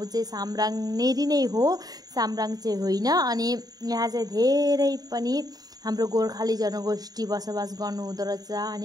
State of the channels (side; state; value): left; late; 0.18 ms